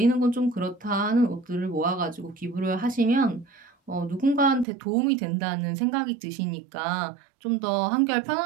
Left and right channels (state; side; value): drops out; left; at 4.7 s